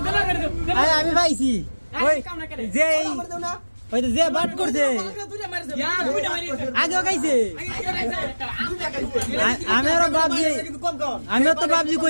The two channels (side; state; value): both; inverted; correlation -1.00